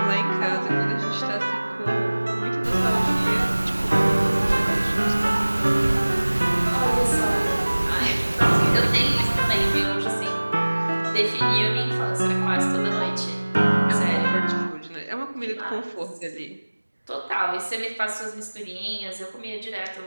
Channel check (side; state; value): both; inverted; correlation -1.00